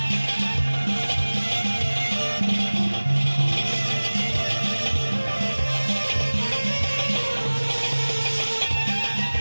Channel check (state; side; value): inverted; both; correlation -1.00